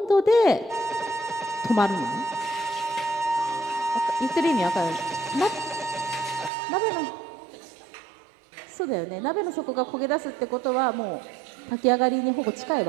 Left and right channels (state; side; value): drops out; left; at 6.5 s